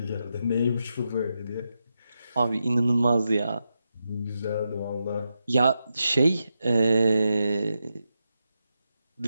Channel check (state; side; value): inverted; both; correlation -0.87